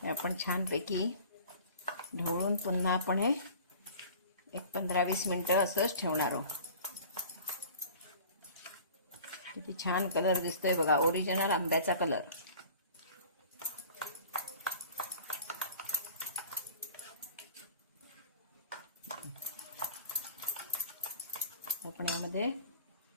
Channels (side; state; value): both; inverted; correlation -0.45